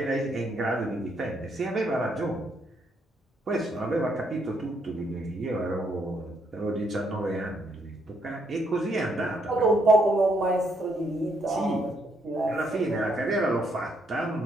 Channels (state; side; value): normal; both; correlation 0.74